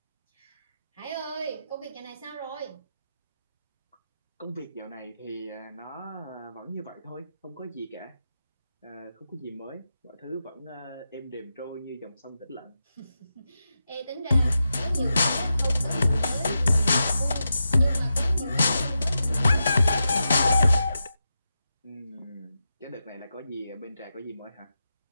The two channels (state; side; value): inverted; both; correlation -0.89